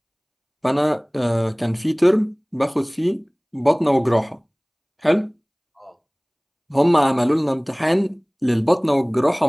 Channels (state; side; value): identical; both; correlation 1.00